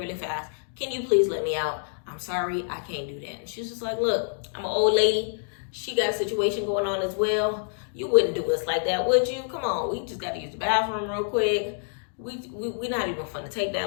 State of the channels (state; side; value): silent; right; digital silence